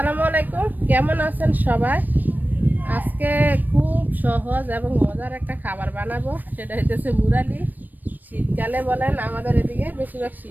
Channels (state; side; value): late; left; 0.087 ms